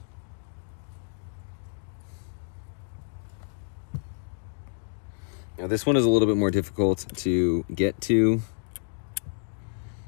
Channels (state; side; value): silent; right; digital silence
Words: Now this one is a little bit more difficult to get to.